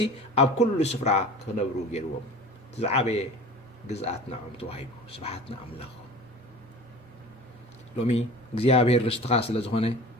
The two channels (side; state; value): both; normal; correlation 0.39